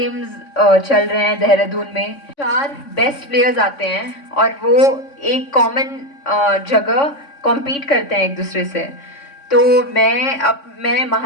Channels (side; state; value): right; late; 3.6 ms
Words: चल रहे हैं देहरादून में। 4 बेस्ट प्लेयर्स आते हैं और वो एक कॉमन जगह कॉम्पीट करते हैं एक दूसरे से। तो मैं